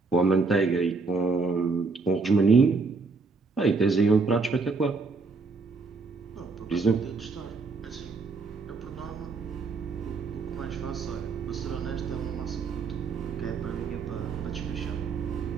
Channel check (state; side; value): quieter; left; 4.2 dB